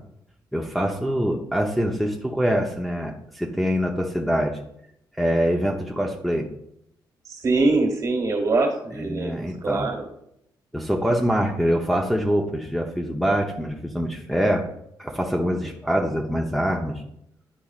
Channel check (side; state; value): both; normal; correlation 0.89